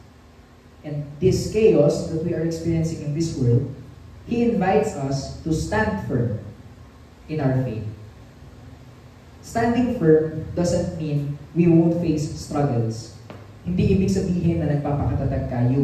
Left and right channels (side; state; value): both; identical; correlation 1.00